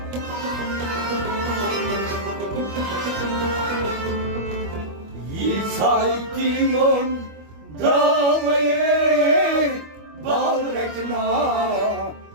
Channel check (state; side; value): late; left; 25 ms